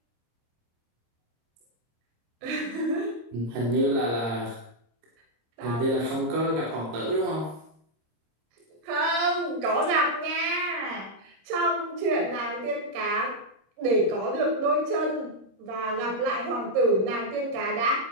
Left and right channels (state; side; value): late; left; 26 ms